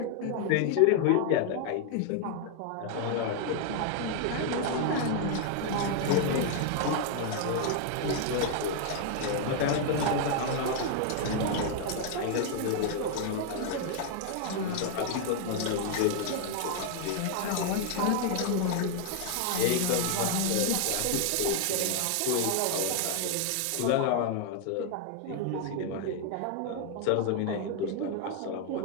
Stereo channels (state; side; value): different; both; correlation 0.00